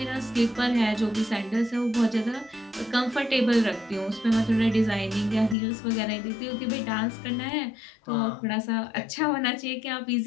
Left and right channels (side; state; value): right; drops out; at 5.6 s